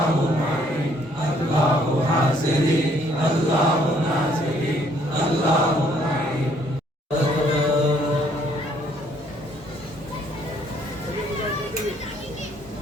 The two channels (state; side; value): normal; both; correlation 0.65